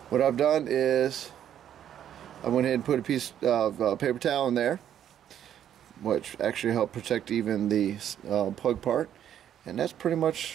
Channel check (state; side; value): quieter; left; 10.1 dB